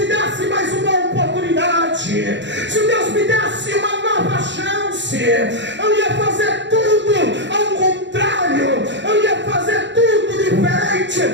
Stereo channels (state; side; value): late; left; 0.52 ms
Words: desse mais uma oportunidade, se Deus me desse uma nova chance, eu ia fazer tudo ao contrário, eu ia fazer tudo diferente.